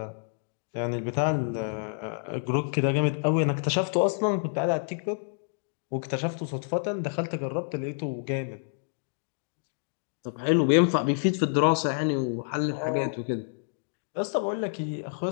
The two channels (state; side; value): silent; right; digital silence